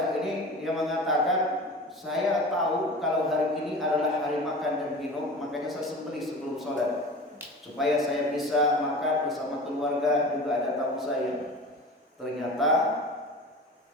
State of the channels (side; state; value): both; normal; correlation 0.35